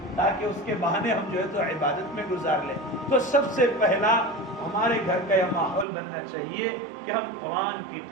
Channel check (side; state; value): left; drops out; at 5.9 s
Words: تاکہ اس کے بہانے ہم جو ہے تو عبادت میں گزار لیں. تو سب سے پہلا ہمارے گھر کا یہ ماحول بننا چاہیے کہ ہم قرآن کی